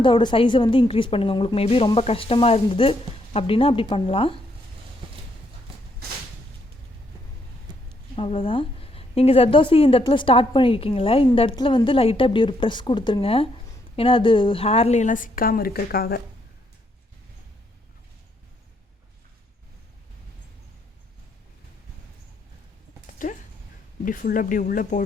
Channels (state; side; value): normal; both; correlation 0.74